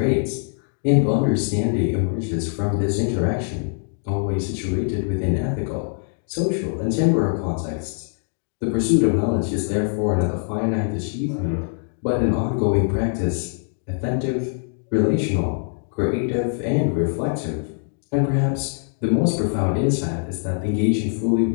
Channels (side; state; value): right; silent; digital silence